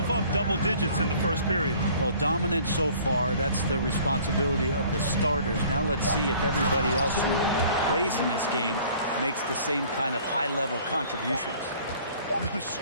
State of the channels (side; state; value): both; inverted; correlation -0.52